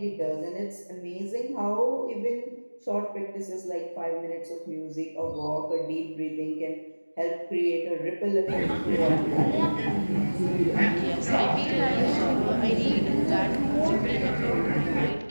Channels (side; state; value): both; inverted; correlation -1.00